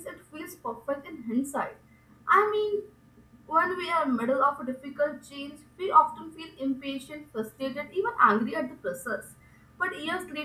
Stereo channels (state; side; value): identical; both; correlation 1.00